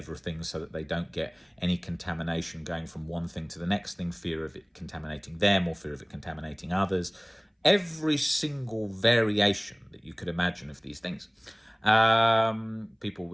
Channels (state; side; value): identical; both; correlation 1.00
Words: so that they don't get any contamination going from one thing to the next thing, fear of it contaminating them or fear of it contaminating others. Every single variation that you could imagine of these things. People